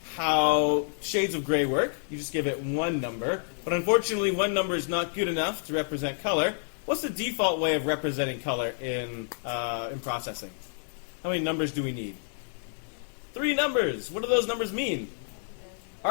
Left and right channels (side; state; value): right; silent; 59 dB below the other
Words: how shades of gray work. You just give it one number. But unfortunately, one number is not good enough to represent color. What's the default way of representing color in processing? How many numbers do we need? 3 numbers. What do those numbers mean?